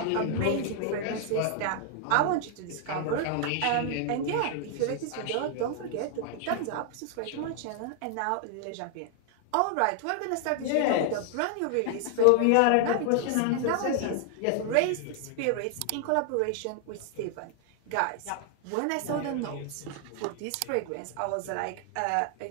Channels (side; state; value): both; different; correlation 0.00